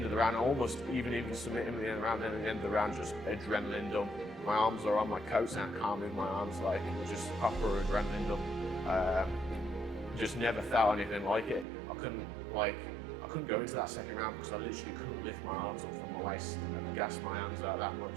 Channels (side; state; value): left; drops out; at 11.7 s